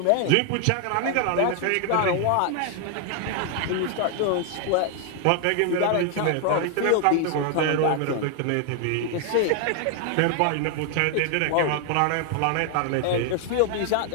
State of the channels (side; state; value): both; different; correlation 0.00